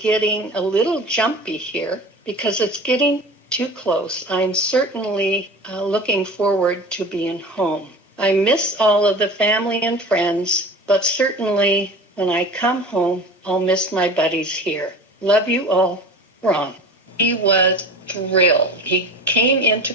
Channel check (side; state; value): both; normal; correlation 0.36